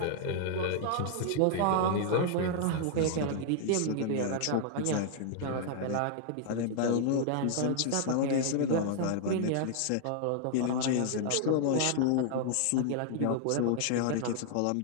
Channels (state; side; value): different; both; correlation 0.00